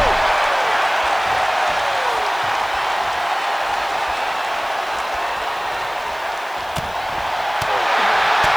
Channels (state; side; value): noise; left; hiss, 23 dB below the sound